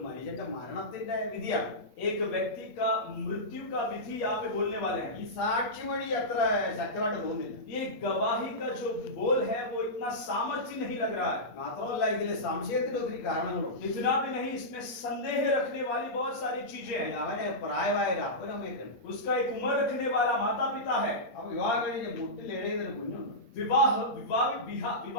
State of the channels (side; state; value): right; late; 8.5 ms